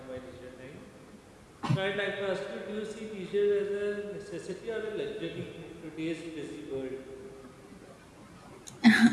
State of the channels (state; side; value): identical; both; correlation 1.00